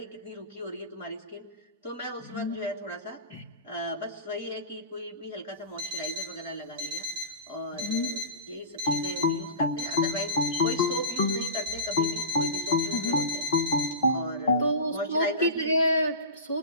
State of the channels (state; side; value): inverted; both; correlation -0.31